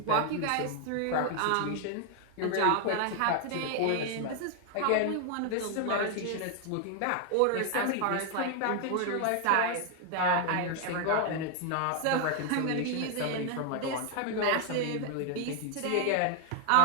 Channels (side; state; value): both; different; correlation 0.00